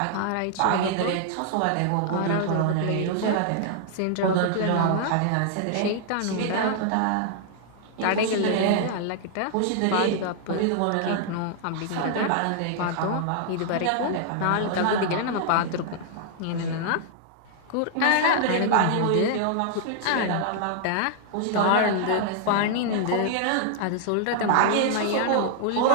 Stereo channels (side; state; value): both; different; correlation -0.01